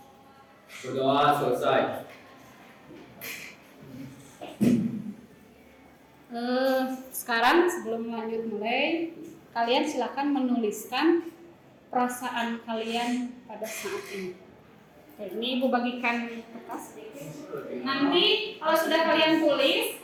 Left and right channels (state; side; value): identical; both; correlation 1.00